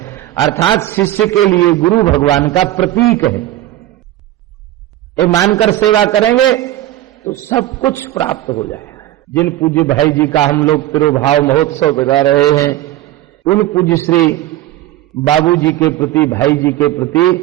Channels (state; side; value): quieter; left; 14.4 dB